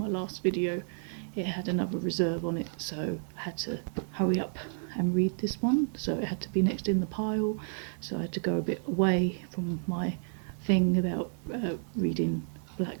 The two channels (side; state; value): left; silent; 57 dB below the other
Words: last video it had another reserve on it, so I had to hurry up and read this one, so it had to be next in the pile, so I had to go a bit away from my thing about reading black